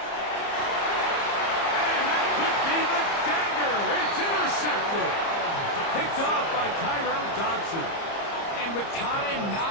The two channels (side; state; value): right; late; 30 ms